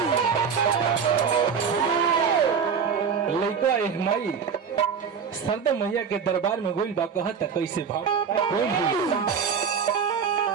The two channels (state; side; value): quieter; left; 6.6 dB